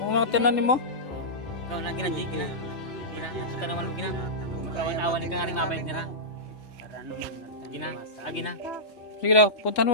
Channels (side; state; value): both; normal; correlation -0.15